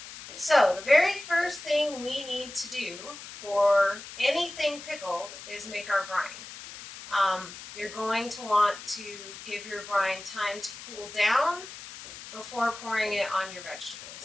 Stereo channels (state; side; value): noise; left; hiss, 13 dB below the sound